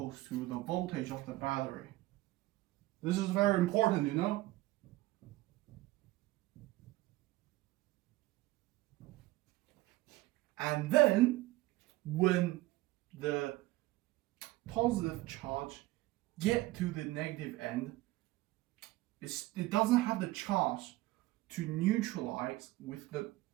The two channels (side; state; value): left; quieter; 18.5 dB